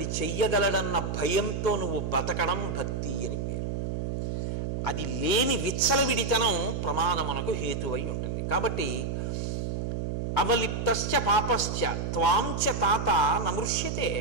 చెయ్యగలడన్న భయంతో నువ్వు బతకడం భక్తి అని పేరు. అది లేని విచ్చలవిడితనం ప్రమాదమునకు హేతువై ఉంటుంది. కాబట్టి అవలిప్తశ్చ పాపశ్చ త్వాంచ తాత నమృష్యతే.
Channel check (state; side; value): noise; right; hum, 2 dB below the sound